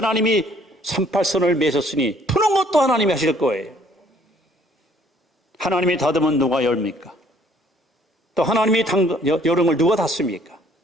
38선을 매셨으니 푸는 것도 하나님이 하실 거예요. 하나님이 닫으면 누가 열입니까? 또 하나님이 여름을 누가 닫습니까?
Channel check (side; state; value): both; normal; correlation 0.60